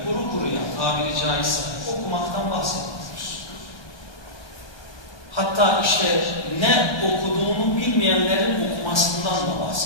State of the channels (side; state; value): right; late; 1.2 ms